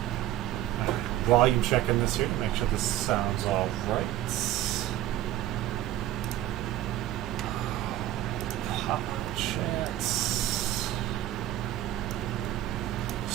Volume checking this here to make sure this sounds all right. Pop chats.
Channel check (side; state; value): left; quieter; 13.7 dB